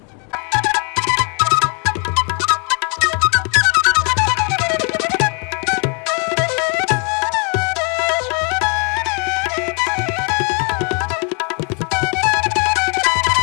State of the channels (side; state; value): right; quieter; 37.2 dB